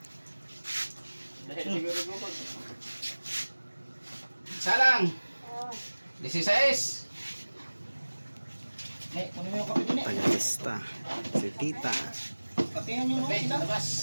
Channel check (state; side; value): inverted; both; correlation -1.00